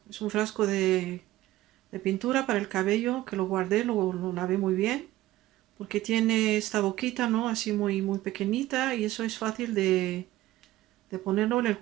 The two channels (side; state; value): left; quieter; 16.1 dB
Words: Es un frasco de pintura para el cabello que lo guardé, lo lavé muy bien. Porque tiene esta boquita, ¿no? Así muy pequeñita y eso es fácil de ponerlo en el